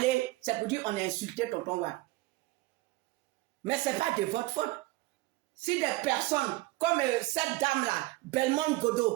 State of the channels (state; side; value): quieter; left; 20.0 dB